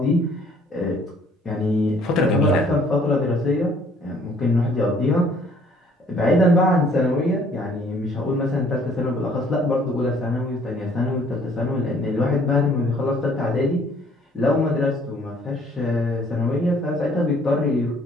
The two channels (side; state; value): both; normal; correlation 0.59